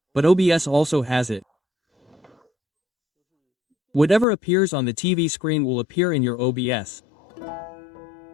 but OBS also has it. Whatever appears on the TV screen will appear in your OBS.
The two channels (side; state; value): right; drops out; at 4.2 s